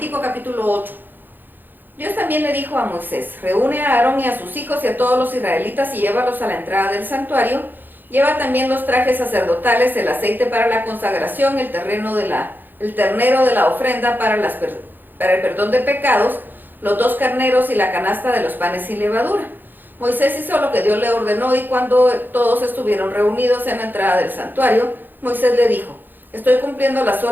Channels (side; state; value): left; late; 0.090 ms